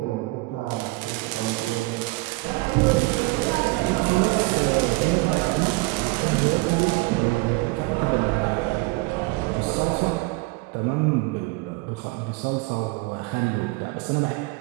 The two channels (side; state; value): left; quieter; 24.2 dB